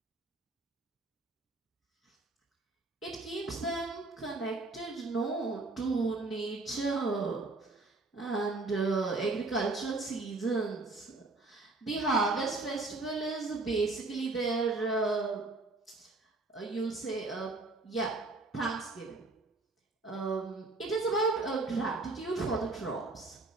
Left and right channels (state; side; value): quieter; left; 3.3 dB